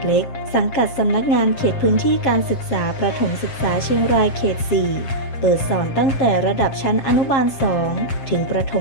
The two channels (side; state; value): right; late; 7.5 ms